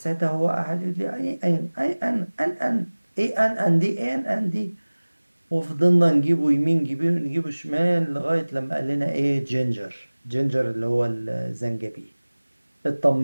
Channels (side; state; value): both; inverted; correlation -1.00